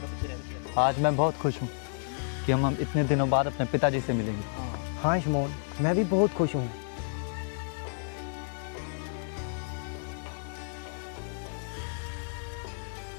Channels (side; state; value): right; silent; 57 dB below the other